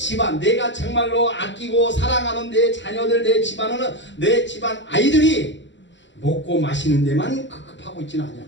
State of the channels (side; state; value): right; late; 0.53 ms